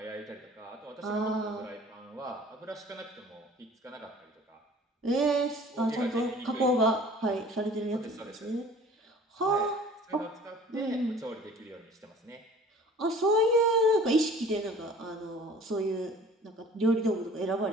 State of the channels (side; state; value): both; normal; correlation 0.48